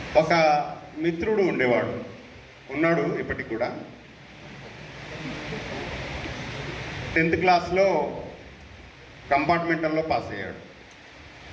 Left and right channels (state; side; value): identical; both; correlation 1.00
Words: ఒక మిత్రుడు ఉండేవాడు, ఉన్నాడు ఇప్పటికి కూడా. 10th క్లాస్లో కంపార్ట్మెంటల్లో పాస్ అయ్యాడు.